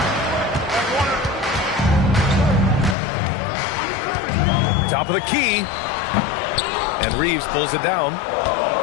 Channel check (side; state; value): right; drops out; at 3.0 s